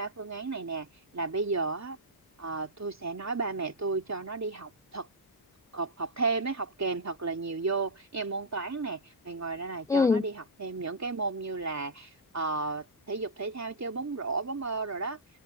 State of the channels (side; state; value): both; normal; correlation -0.10